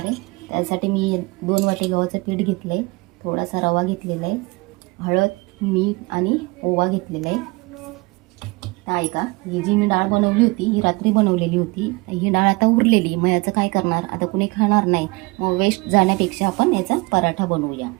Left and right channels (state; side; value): quieter; left; 25.6 dB